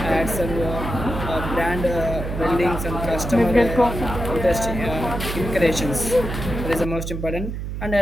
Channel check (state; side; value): noise; right; hum, 5 dB below the sound